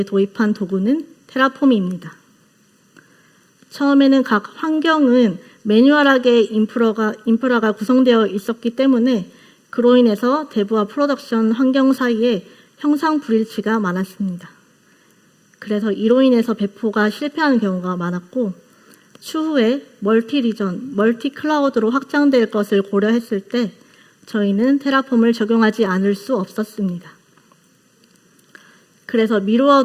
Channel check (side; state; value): both; identical; correlation 1.00